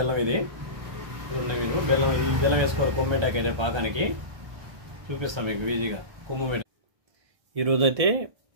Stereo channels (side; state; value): left; late; 1.3 ms